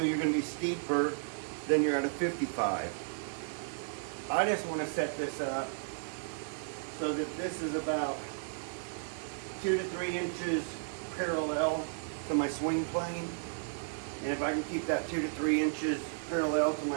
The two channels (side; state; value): left; silent; 55 dB below the other